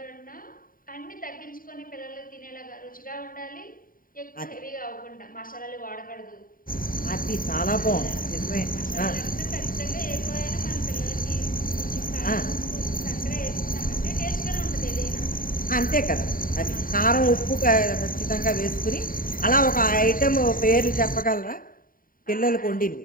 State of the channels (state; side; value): late; right; 0.41 ms